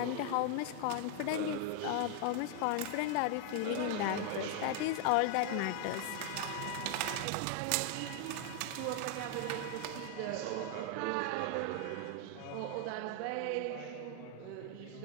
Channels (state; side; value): different; both; correlation 0.00